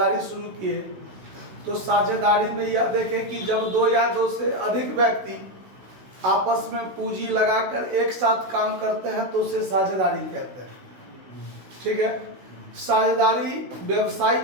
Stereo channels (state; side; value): late; left; 16 ms